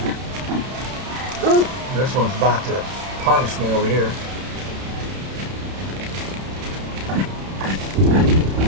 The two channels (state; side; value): late; left; 31 ms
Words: This one's about to punish me over here.